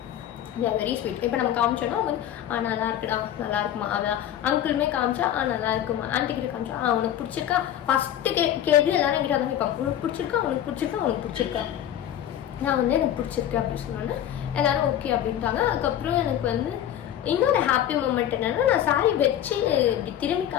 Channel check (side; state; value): right; quieter; 11.0 dB